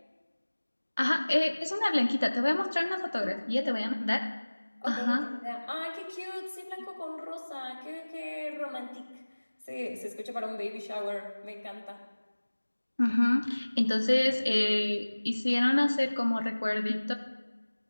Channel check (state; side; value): inverted; both; correlation -1.00